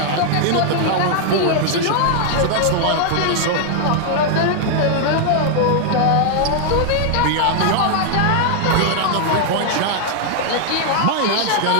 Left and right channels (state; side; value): different; both; correlation 0.00